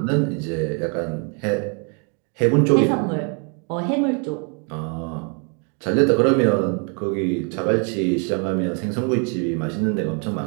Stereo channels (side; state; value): left; quieter; 37.9 dB